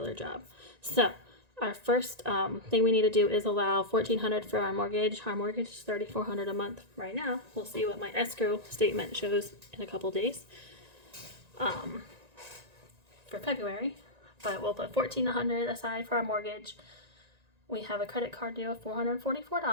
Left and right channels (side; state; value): left; late; 1.9 ms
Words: job. So our first thing we need to do is allow $1,400 for our mortgage. Our mortgage is $3,400 a month right now. We'll see what my escrow statement shows in a couple days for February, but we'll put $1,400 aside for our mortgage. We have a credit card due of